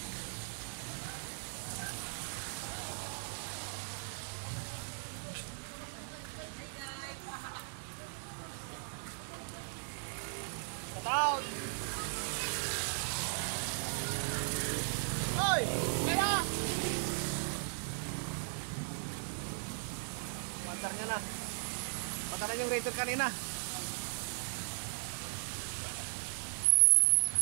Cut out! Hoy! Kaya! Mandar niya na. Patalan yung Raider kanina.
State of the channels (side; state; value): left; silent; digital silence